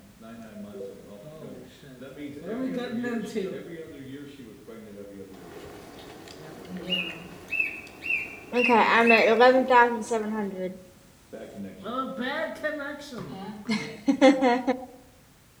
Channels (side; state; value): both; identical; correlation 1.00